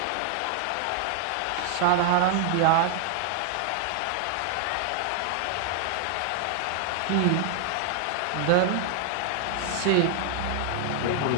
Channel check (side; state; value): both; different; correlation 0.00